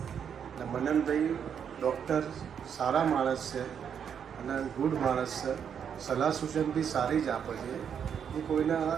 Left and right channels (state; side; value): quieter; left; 7.8 dB